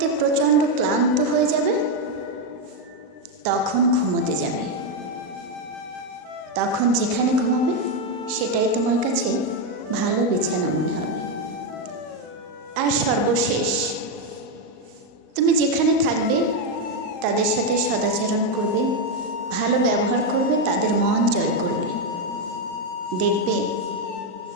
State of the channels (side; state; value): left; late; 38 ms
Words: প্রচণ্ড ক্লান্ত হয়ে যাবে তখন ঘুমোতে যাবে। তখন যেখানে ঘুমাবে সেটাই তোমার কাছে ভালো বিছানা মনে হবে। আর সর্বশেষ, তুমি যেখানে থাকবে তাদের সাথে সদাচরণ করবে, ভালো ব্যবহার করবে, তাদের মন জয় করবে। দেখবে